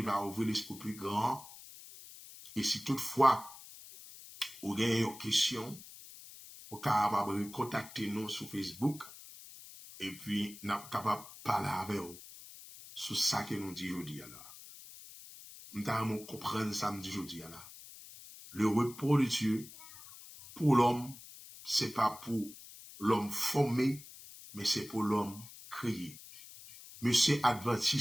va ouvrir l'esprit plus grand. Et si toutefois, vous avez une question, vous êtes capable de contacter nous sur Facebook. Et puis, nous sommes capables de parler avec vous sur ça que nous disons aujourd'hui. Nous avons compris ça nous disons aujourd'hui. Le repos de Dieu, pour l'homme, ce n'est pas pour l'homme formé, mais c'est pour l'homme créé. Monsieur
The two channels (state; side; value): noise; left; hiss, 17 dB below the sound